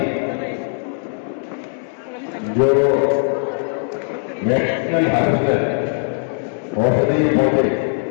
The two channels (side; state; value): right; silent; digital silence